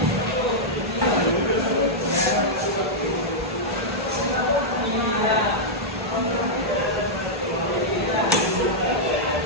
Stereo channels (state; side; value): normal; both; correlation -0.08